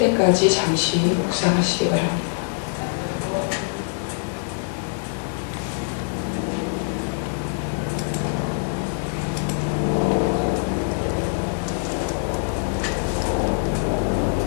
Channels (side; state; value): right; silent; digital silence